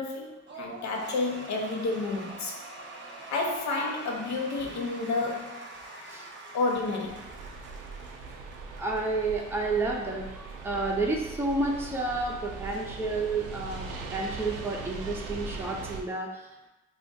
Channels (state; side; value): normal; both; correlation 0.22